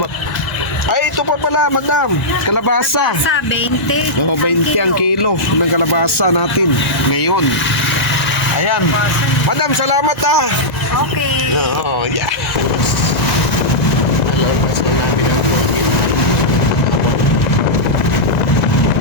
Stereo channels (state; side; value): late; right; 2.0 ms